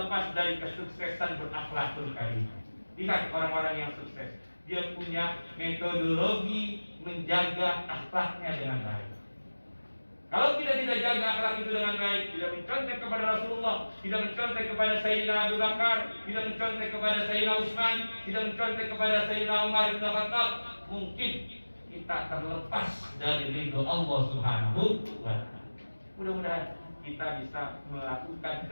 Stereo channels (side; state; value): both; inverted; correlation -1.00